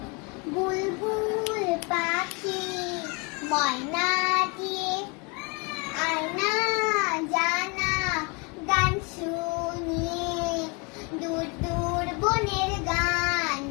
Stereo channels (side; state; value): right; quieter; 31.3 dB